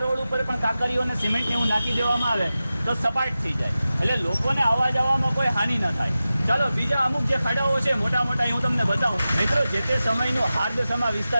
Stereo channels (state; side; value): inverted; both; correlation -0.94